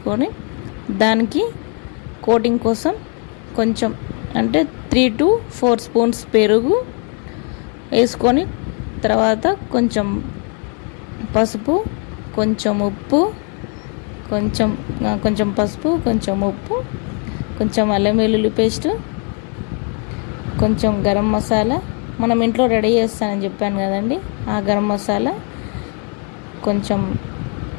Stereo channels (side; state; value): right; quieter; 39.2 dB